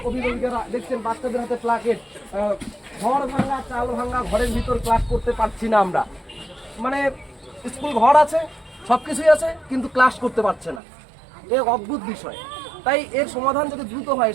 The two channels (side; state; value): left; drops out; at 10.8 s